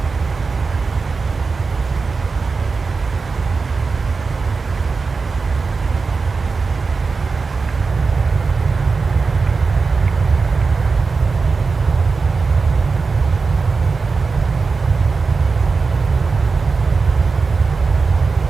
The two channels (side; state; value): left; quieter; 4.5 dB